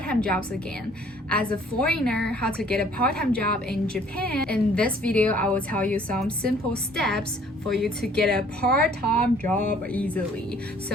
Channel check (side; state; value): both; normal; correlation 0.57